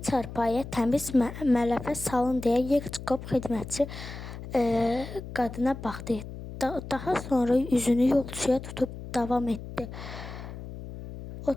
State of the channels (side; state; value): left; noise; hum, 11 dB below the sound